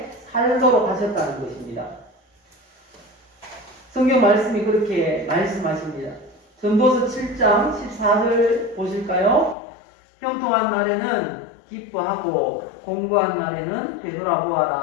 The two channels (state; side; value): drops out; right; at 9.6 s